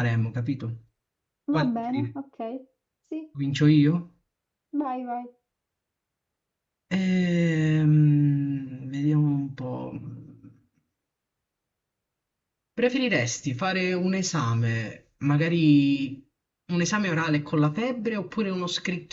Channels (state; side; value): identical; both; correlation 1.00